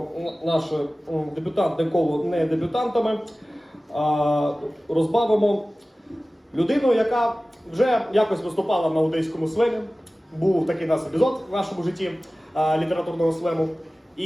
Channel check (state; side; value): normal; both; correlation 0.97